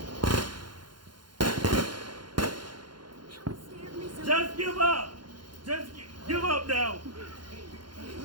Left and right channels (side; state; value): left; late; 0.71 ms